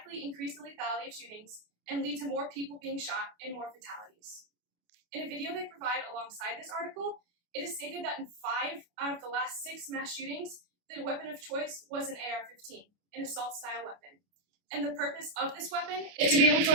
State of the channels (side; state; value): left; late; 28 ms